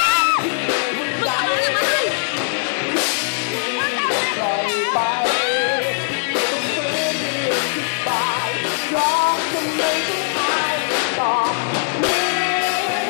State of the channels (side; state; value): right; silent; digital silence